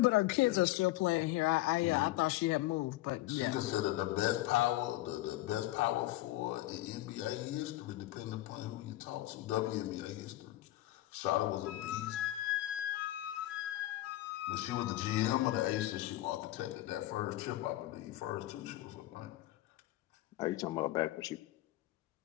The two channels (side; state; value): right; quieter; 16.4 dB